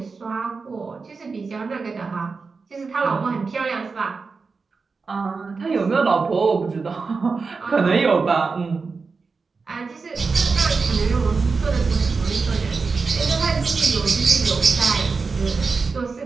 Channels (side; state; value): left; quieter; 4.6 dB